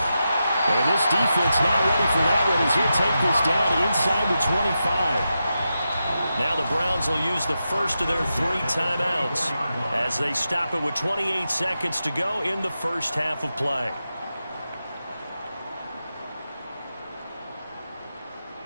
And this defense not ready for that one as he'll take this down inside the 25. Now the Browns will use the first of their 3 timeouts as they stop it with 28 seconds to go in the first half of play.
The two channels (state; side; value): inverted; both; correlation -0.89